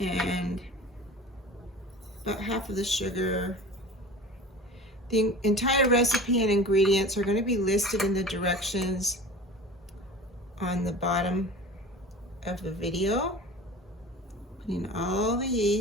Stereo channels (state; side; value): normal; both; correlation 0.37